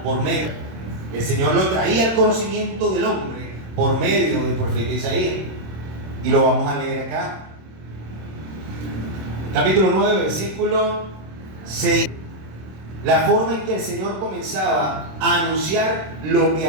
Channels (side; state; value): left; late; 26 ms